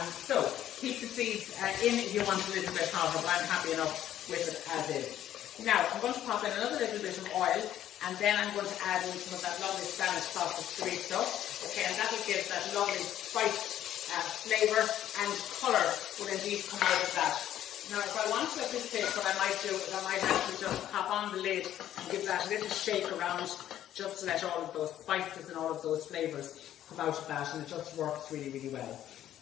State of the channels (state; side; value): quieter; right; 11.8 dB